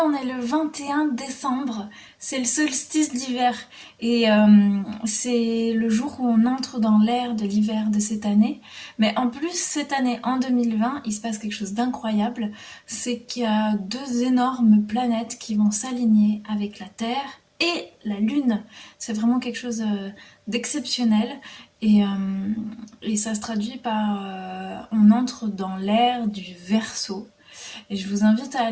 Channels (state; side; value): identical; both; correlation 1.00